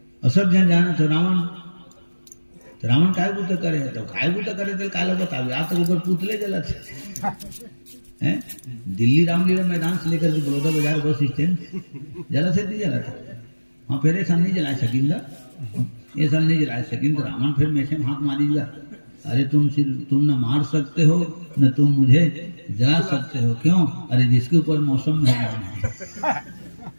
और सब जन जाना तो रावण काय बूता करे तो काय बूता करे तो काला बतावे आज तक ऊपर पुतले जला थे हैं। दिल्ली रामलीला मैदान से लेकर बड़ौदा बाजार बस स्टैंड जला से नहीं जला था वहाँ फिर ऐसा नहीं जला सकेंगे, ये साल नहीं जला सकेंगे। रावण फिर में से हाथ मारीगा, अरे तुम न मार सकते हो न तुम मुझे जला सकते हो, क्यों? अरे जिसके ऊपर मौसम मेहमान है,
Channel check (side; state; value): both; inverted; correlation -1.00